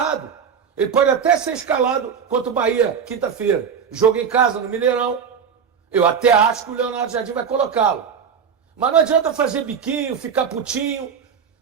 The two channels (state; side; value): quieter; left; 6.9 dB